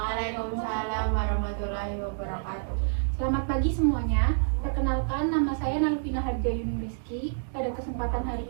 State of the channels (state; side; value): silent; left; digital silence